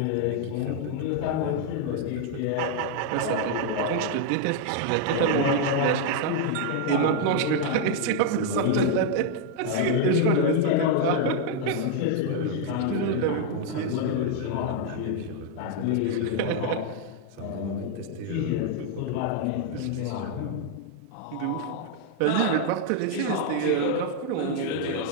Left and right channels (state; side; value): different; both; correlation 0.00